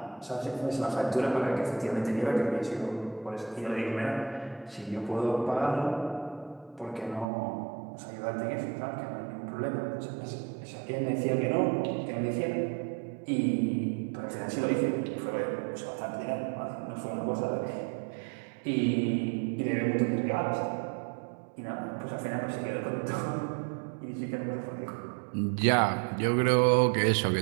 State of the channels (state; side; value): drops out; left; at 7.2 s